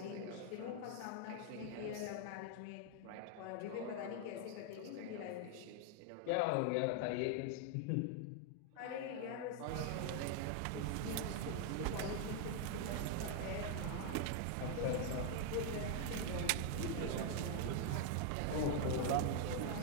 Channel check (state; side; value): different; both; correlation 0.00